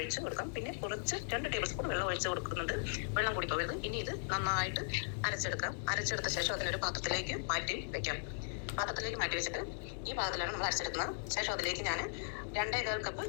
കൊടുക്കാം. പിന്നെ കുറച്ച് 2 ടേബിൾ സ്പൂൺ വെള്ളം ഒഴിച്ച് കൊടുക്കുന്നുണ്ട്. വെള്ളം കൂടി പോകരുത്. ഇനി ഇത് നന്നായിട്ട് അരച്ചെടുക്കാം. അരച്ചെടുത്ത ശേഷം അതിനൊരു പാത്രത്തിലേക്ക് മാറ്റി വെക്കാം. പാത്രത്തിലേക്ക് മാറ്റി വെച്ചിട്ട് ഈ പാത്രത്തിലാണ് നമ്മൾ അരച്ചെടുക്കുന്നത്. ശേഷം അതിലേക്ക് ഞാൻ 2.25 കപ്പ്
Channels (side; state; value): right; silent; digital silence